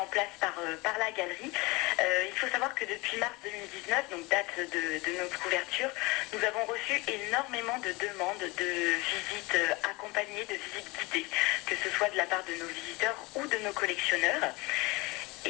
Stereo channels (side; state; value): right; quieter; 24.3 dB